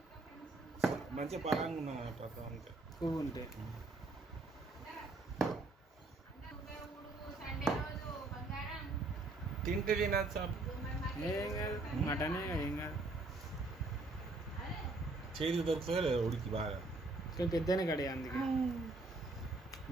మంచిగా పరంగా ఉన్నట్టు అర్థం. అంతే పువ్వు ఉంటే తింటే తినచ్చా, ఏం కాదు, మటనే ఏం కాదు. చేతికి దొరుకుతుంది లేదా ఉడికి బాగా పెద్దనే కడియా. అందుకే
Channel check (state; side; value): quieter; left; 3.0 dB